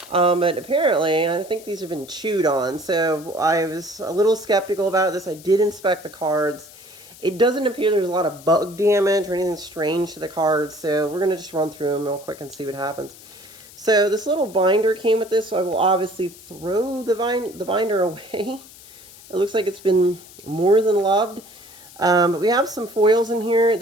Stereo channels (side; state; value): left; noise; hiss, 20 dB below the sound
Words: But apparently, I think these have been chewed on. So I was a little skeptical about this. I did inspect the cards. It doesn't appear there's a lot of bug damage or anything strange to the cards. So we're going to just run through them real quick and see what happens. So this little binder came with this, so I will obviously throw the binder away. It looks like it's been more than loved. But we have some foils in here.